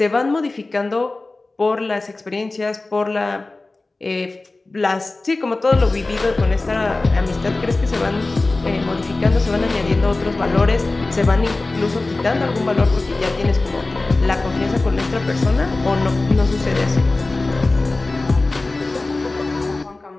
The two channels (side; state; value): right; quieter; 3.2 dB